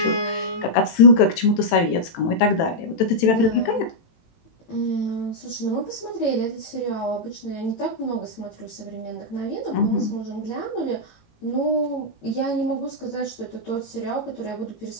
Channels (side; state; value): right; late; 18 ms